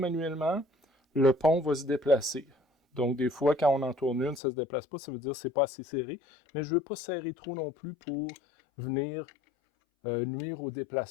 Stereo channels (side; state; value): right; drops out; at 4.4 s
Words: le pont va se déplacer. Donc des fois, quand on en tourne une, ça ne se déplace pas, ça veut dire que ce n'est pas assez serré. Mais je ne veux pas serrer trop non plus pour venir nuire au